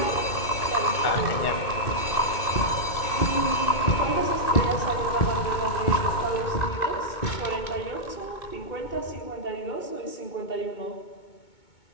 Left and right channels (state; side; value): late; right; 2.2 ms